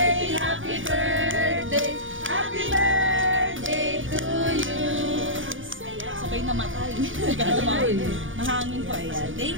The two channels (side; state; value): left; late; 0.57 ms